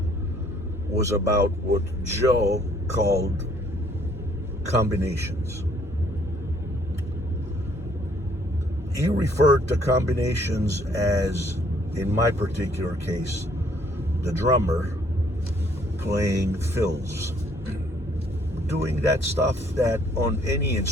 was about what Joe called combinations. He referred to combinations as, in my particular case, the drummer playing fills, doing that stuff that on any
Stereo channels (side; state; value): both; normal; correlation 0.63